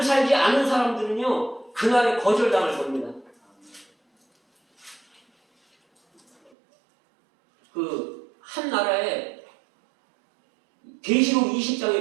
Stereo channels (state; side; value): drops out; left; at 6.5 s